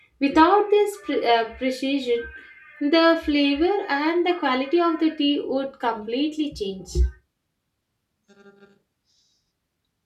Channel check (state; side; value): identical; both; correlation 1.00